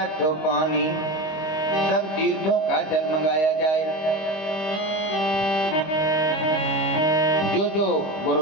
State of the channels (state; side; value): late; right; 25 ms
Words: पानी, सब तीर्थों का जल मंगाया जाए। जो जो